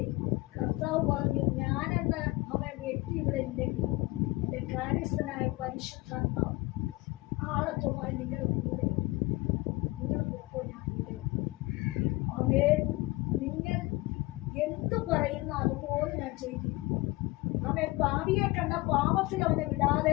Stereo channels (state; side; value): quieter; right; 21.3 dB